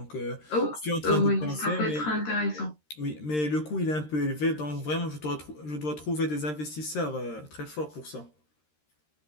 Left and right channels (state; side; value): late; right; 13 ms